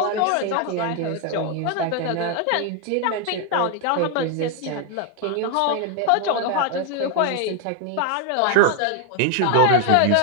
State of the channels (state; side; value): different; both; correlation 0.01